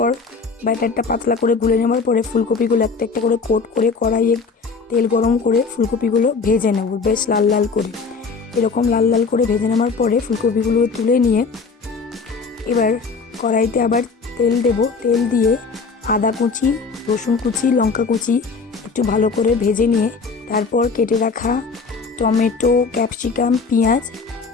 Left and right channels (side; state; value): right; quieter; 4.7 dB